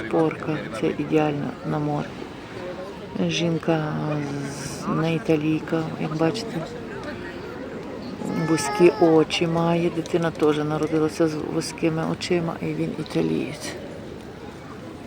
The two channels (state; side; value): identical; both; correlation 1.00